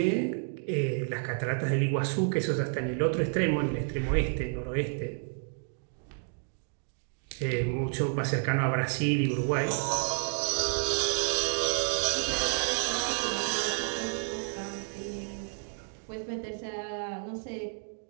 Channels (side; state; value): left; silent; 57 dB below the other